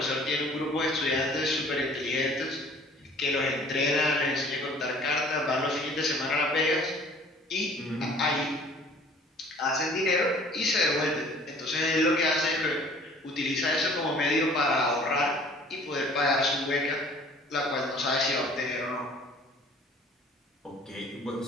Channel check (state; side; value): normal; both; correlation 0.52